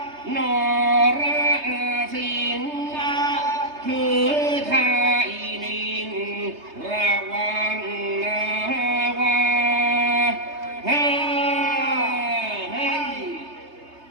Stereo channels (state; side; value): late; left; 3.3 ms